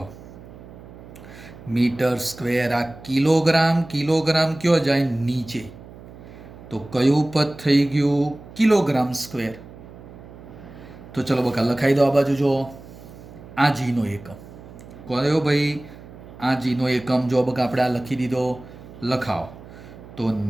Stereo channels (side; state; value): right; noise; hum, 18 dB below the sound